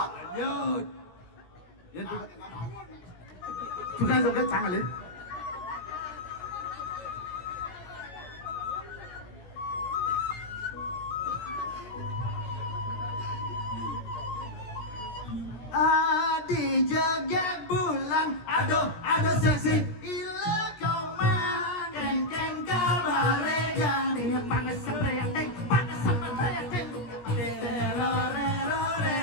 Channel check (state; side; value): late; right; 17 ms